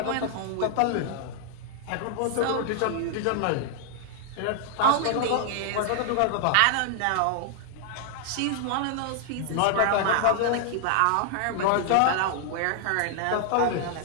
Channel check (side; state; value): both; different; correlation -0.01